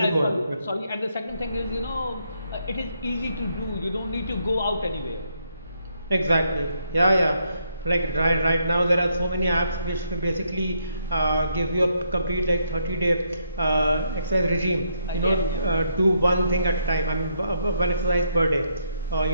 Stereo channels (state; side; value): inverted; both; correlation -0.75